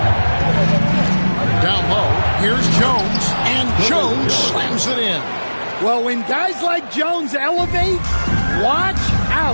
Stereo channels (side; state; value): both; inverted; correlation -1.00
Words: Down low, here's Jones. And Jones slams it in. Well, when guys like Jones elevate, watch